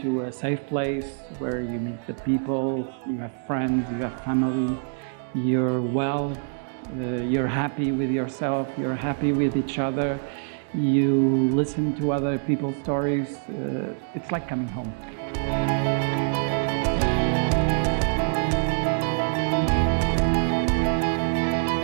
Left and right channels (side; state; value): left; silent; digital silence